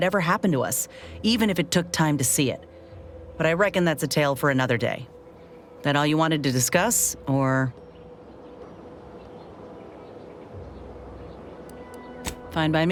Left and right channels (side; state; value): both; identical; correlation 1.00